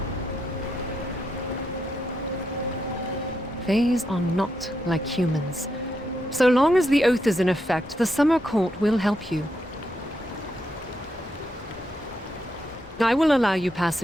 Fays are not like humans. So long as the oath is in effect, the Summer Court will help you. I will allow you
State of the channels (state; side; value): normal; both; correlation 0.81